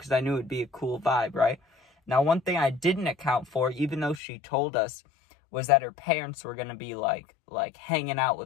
I knew it'd be a cool vibe, right? Now, one thing I didn't account for, even though she told us, was that her parents were going to be like hanging out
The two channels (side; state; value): right; drops out; at 4.2 s